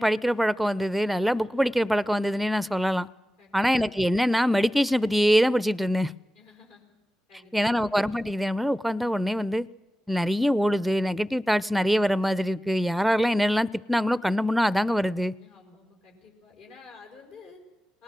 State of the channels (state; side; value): normal; both; correlation 0.96